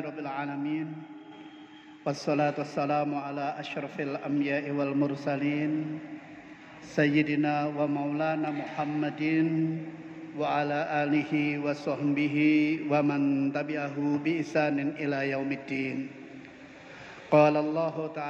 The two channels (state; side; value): identical; both; correlation 1.00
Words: alamin. Wassalatu wassalamu ala asyrafil anbiya'i wal mursalin sayyidina wa maulana Muhammadin wa ala alihi wa sahbihi wa man tabi'ahu bi ihsanin ila yaumiddin. Qala Allah